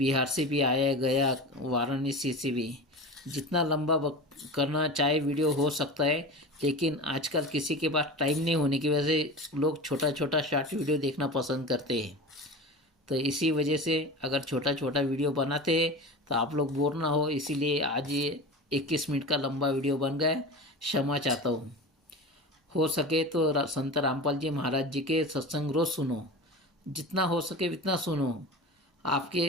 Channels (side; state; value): both; normal; correlation 0.30